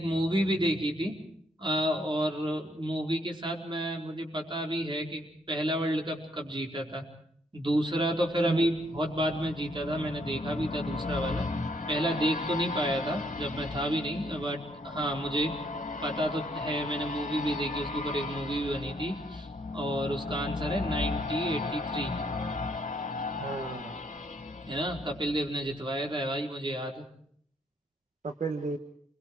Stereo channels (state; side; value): normal; both; correlation 0.70